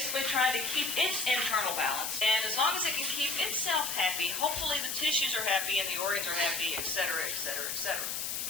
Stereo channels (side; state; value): left; noise; hiss, 2 dB below the sound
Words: trying to keep its internal balance, and as long as it can keep itself happy, hopefully the tissues are happy and the organs are happy, etc., etc., etc.